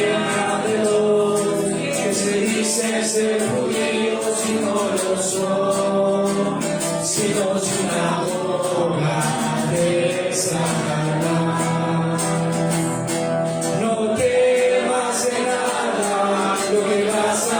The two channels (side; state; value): both; identical; correlation 1.00